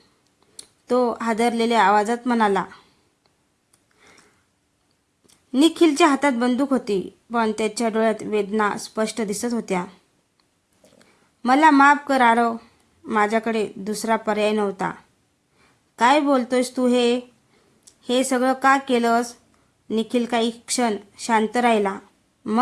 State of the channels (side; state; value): both; identical; correlation 1.00